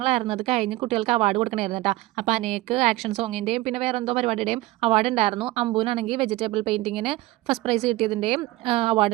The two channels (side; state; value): left; quieter; 18.5 dB